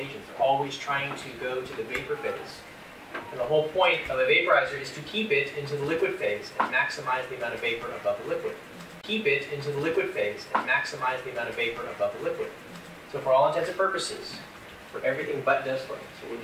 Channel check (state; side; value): identical; both; correlation 1.00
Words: agents. They're always trying to go to the vapor phase. And the whole point of a vaporizer is to keep it into the liquid phase and maximize the amount of vapor above the liquid. Keep it into the liquid phase and maximize the amount of vapor above the liquid. So for all intents and purposes, for everything but desflurane, so we'll